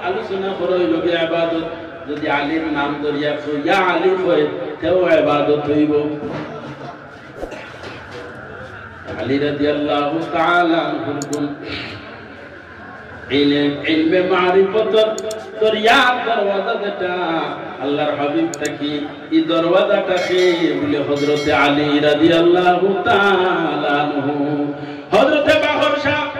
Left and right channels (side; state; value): both; identical; correlation 1.00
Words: আলোচনা করই লগে ইবাদত যদি আলীর নাম ধরিয়া কই ইয়া আলী কই তেও ইবাদত হইব আলী রাদিয়াল্লাহু তাআলা আনহু কোন ইলমে মারিফত দরিয়া দরওয়াজা যেটা আল্লাহর হাবিব তাকি এই দরওয়াজাটাকে বলে হযরত আলী রাদিয়াল্লাহু তাআলা আনহু হযরত বাহর শাহ